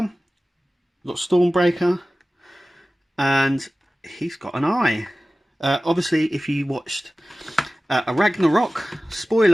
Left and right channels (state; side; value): normal; both; correlation 0.97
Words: we've got Stormbreaker, and he's got an eye. Obviously, if you watched a Ragnarok,